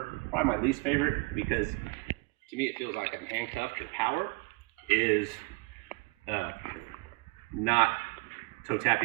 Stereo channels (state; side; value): quieter; left; 28.1 dB